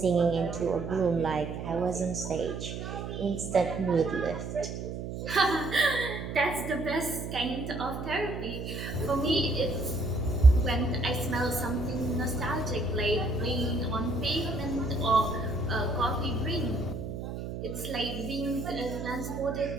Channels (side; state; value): right; noise; hum, 6 dB below the sound